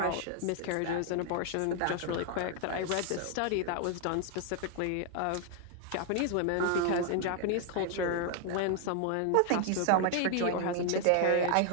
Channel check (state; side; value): different; both; correlation 0.00